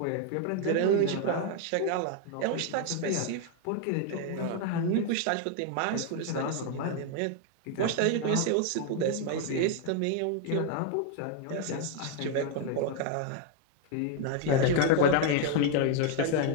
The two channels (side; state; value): both; different; correlation 0.01